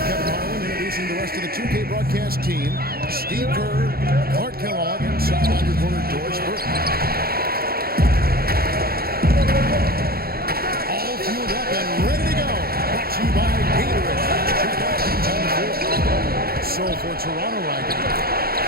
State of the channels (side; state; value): left; late; 0.44 ms